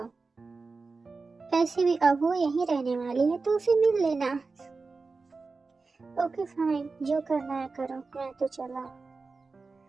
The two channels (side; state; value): left; quieter; 4.1 dB